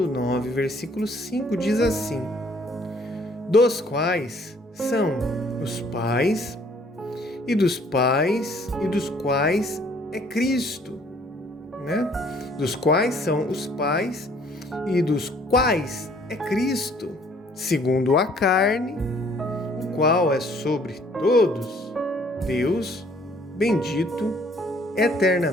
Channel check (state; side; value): normal; both; correlation 0.60